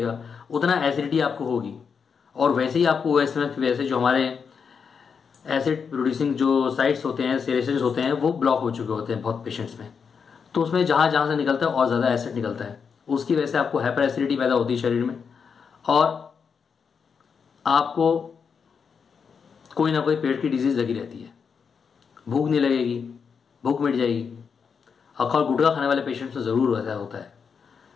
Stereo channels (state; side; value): quieter; right; 6.2 dB